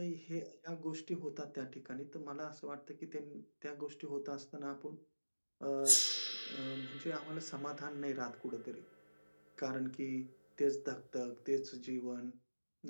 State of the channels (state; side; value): inverted; both; correlation -1.00